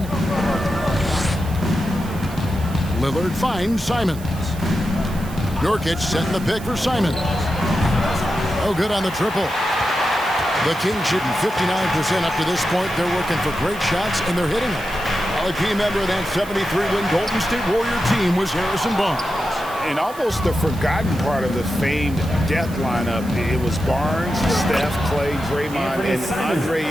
Lillard finds Simons. Nurkic setting the pick for Simons. Oh, good on the triple. The Kings shooting 59% up to this point. They're working for great shots, and they're hitting them. Well, a key member of that 73-win Golden State Warrior team was Harrison Barnes. And almost the forgotten part of the famed death lineup, it was Barnes, Steph, Clay, Draymond, and Andre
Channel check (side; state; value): right; noise; hiss, 18 dB below the sound